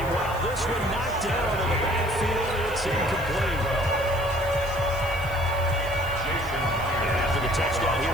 this one knocked down in the backfield. It's incomplete. And after the touchdown,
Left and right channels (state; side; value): noise; right; hiss, 18 dB below the sound